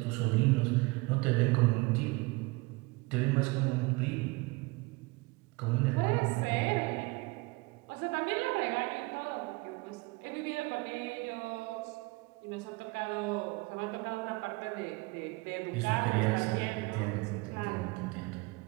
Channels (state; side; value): quieter; left; 24.7 dB